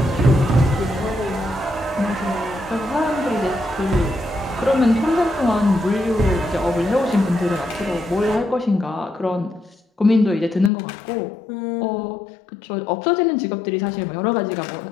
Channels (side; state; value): right; drops out; at 10.7 s